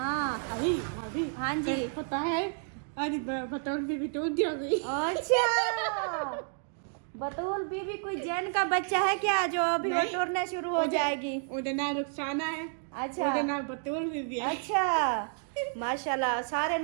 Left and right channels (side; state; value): left; silent; 57 dB below the other